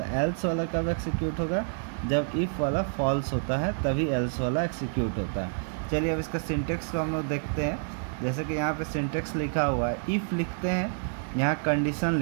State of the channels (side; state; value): left; silent; 59 dB below the other